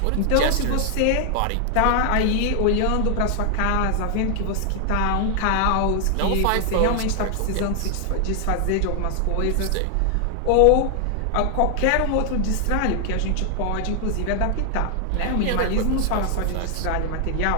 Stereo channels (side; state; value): both; different; correlation 0.00